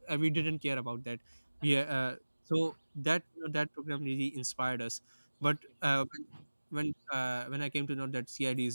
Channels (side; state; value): both; inverted; correlation -1.00